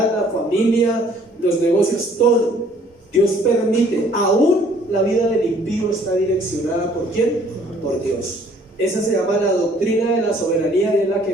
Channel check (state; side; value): normal; both; correlation 0.59